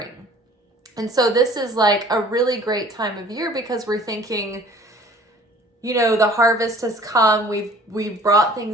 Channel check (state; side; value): normal; both; correlation 0.50